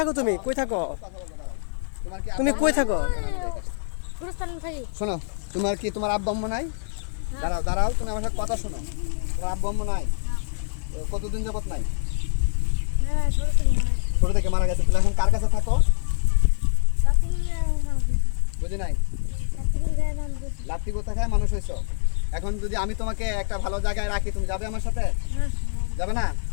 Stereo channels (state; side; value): silent; right; 58 dB below the other